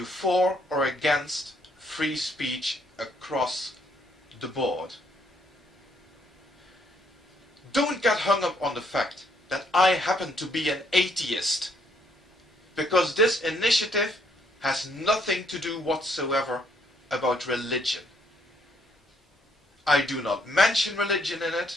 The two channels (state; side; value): normal; both; correlation 0.69